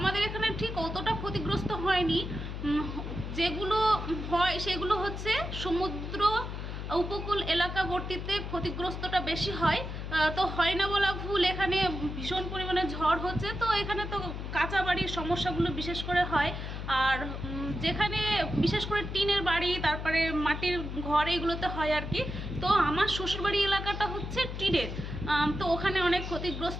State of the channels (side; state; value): left; noise; hum, 6 dB below the sound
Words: এখানে ঠিক অতটা ক্ষতিগ্রস্ত হয়নি, যেগুলো হয় সেগুলো হচ্ছে সমুদ্র উপকূল এলাকাবর্তীতে ক্ষতিগ্রস্তটা বেশি হয়। তো হয় না বলা ভুল, এখানে ভীষণ পরিমাণে ঝড় হচ্ছে, তো এখানে তো কাঁচা বাড়ির সমস্যাগুলো বিশেষ করে হয়। আর যেখানে বিশেষ করে টিনের বাড়ি, তারপরে মাটির ঘর, এইগুলোতে হয় আর কি। তো আমার শ্বশুরবাড়ি এলাকাটা হচ্ছে টিনের, তো ওখানে অনেক